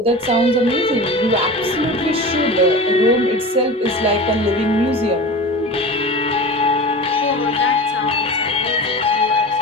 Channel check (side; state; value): both; normal; correlation 0.32